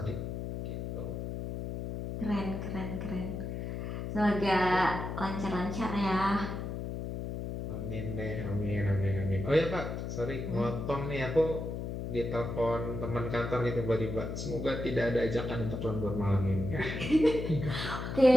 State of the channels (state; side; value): noise; left; hum, 5 dB below the sound